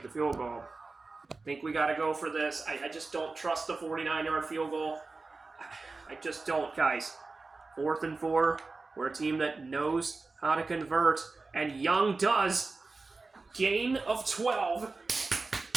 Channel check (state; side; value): quieter; left; 3.8 dB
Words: the field goal. I think we got to go for this. I just don't trust the 49-yard field goal. I just don't, guys. 4th and 4. We're a team that knows how to convert, and Young does. Gain of 12.